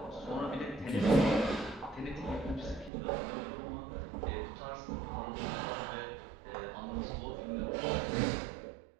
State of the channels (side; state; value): left; drops out; at 2.9 s